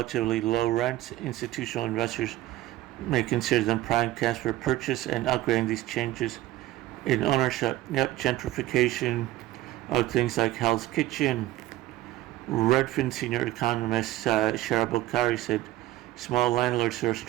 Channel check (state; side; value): quieter; left; 15.8 dB